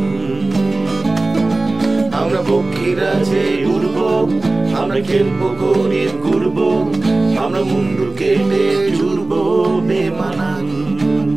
আমরা পক্ষীরা যে উড়ব, আমরা খেলবো গরিব গর্ব, আমরা মুন্ডু কেটে জুড়ব বেমানান।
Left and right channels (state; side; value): quieter; left; 3.0 dB